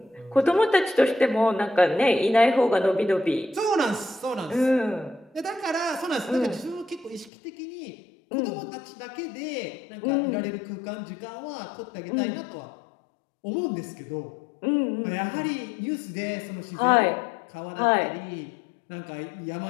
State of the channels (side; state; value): right; drops out; at 7.3 s